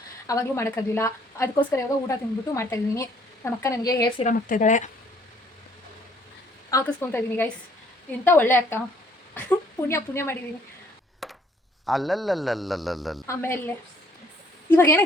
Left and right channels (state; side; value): normal; both; correlation 0.62